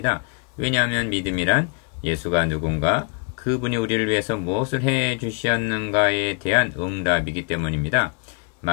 왜냐하면 믿음이란 예수가 누군가 그분이 우리를 위해서 무엇을 해 주셨는가에 대한 응답이기 때문입니다.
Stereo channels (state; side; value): quieter; right; 33.9 dB